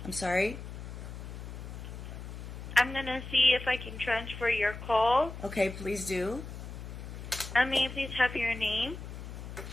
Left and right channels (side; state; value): left; noise; hum, 10 dB below the sound